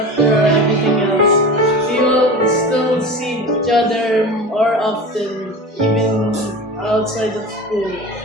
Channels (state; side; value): normal; both; correlation 0.32